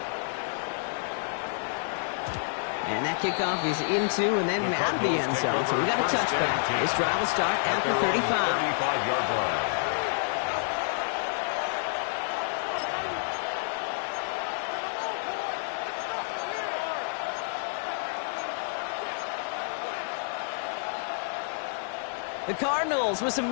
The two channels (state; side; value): silent; right; digital silence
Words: And that kickoff is into and then out of the end zone. So we got a touchback. This drive will start after 35. The Cardinals with some